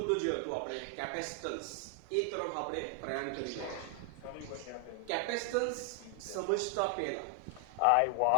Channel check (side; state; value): both; different; correlation 0.00